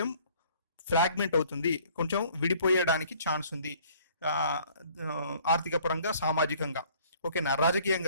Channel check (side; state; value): both; inverted; correlation -0.56